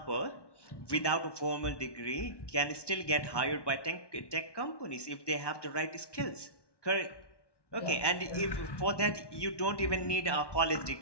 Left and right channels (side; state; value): right; late; 1.1 ms